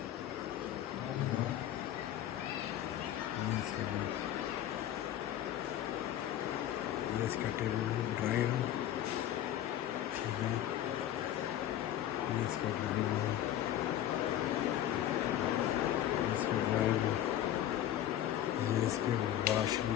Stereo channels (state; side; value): quieter; right; 11.8 dB